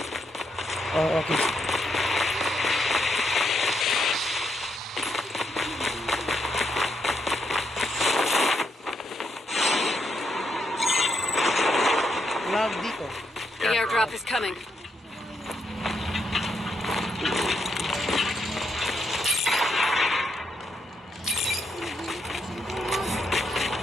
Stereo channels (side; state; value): both; normal; correlation 0.79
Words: Oh, okay. Lag dito. The airdrop is coming.